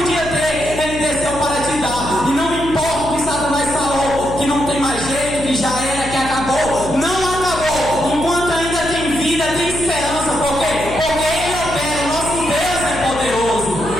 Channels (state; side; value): noise; left; hum, 10 dB below the sound